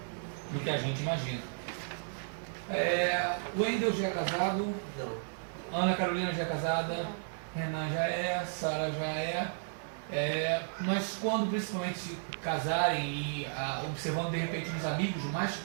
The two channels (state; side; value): silent; left; digital silence